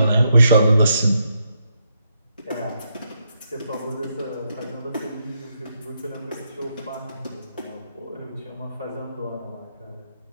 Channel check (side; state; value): both; inverted; correlation -0.79